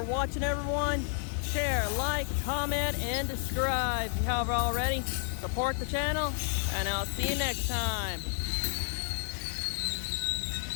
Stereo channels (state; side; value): silent; right; 57 dB below the other